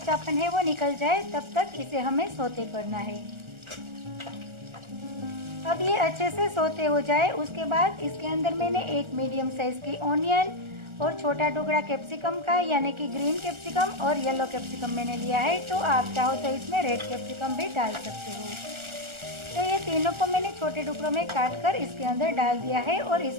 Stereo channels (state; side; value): late; left; 1.4 ms